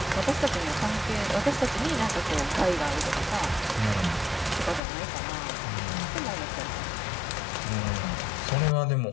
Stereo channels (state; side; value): drops out; right; at 4.8 s